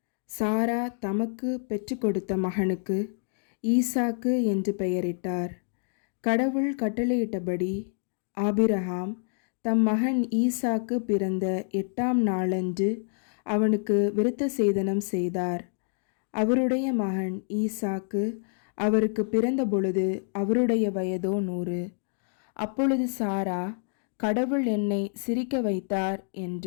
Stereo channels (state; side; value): silent; right; digital silence